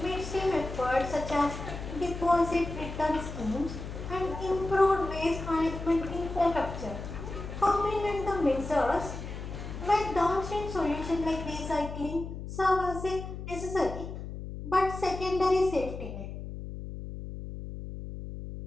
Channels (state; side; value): noise; left; hum, 8 dB below the sound